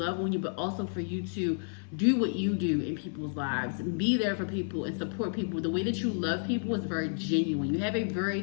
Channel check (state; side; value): silent; right; 57 dB below the other